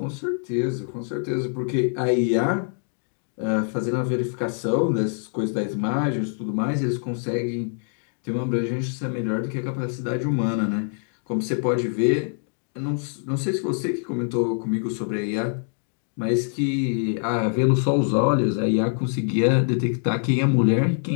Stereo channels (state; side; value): silent; right; 62 dB below the other